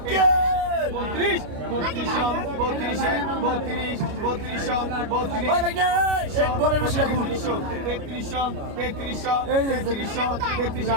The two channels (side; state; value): left; late; 29 ms